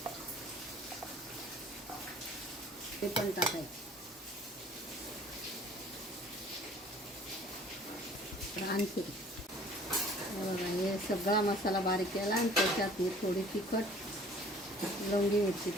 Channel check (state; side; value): normal; both; correlation 0.51